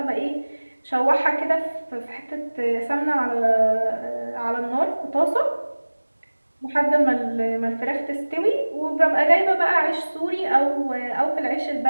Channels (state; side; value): inverted; both; correlation -1.00